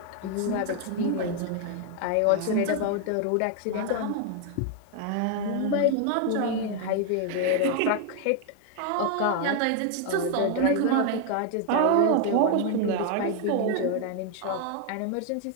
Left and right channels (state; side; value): different; both; correlation 0.00